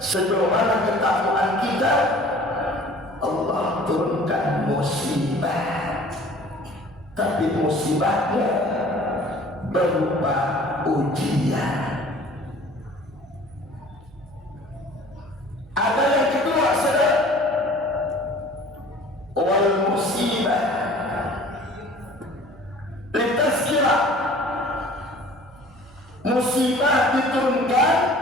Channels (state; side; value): noise; right; hum, 24 dB below the sound